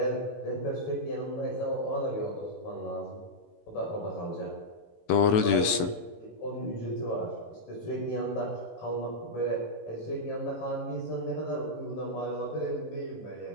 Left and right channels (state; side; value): late; right; 18 ms